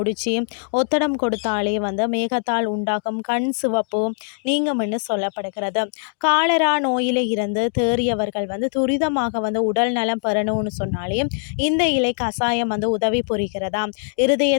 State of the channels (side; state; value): right; silent; 61 dB below the other